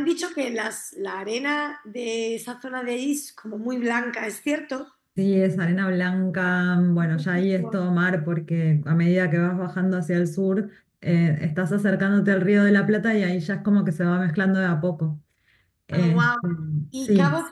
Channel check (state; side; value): identical; both; correlation 1.00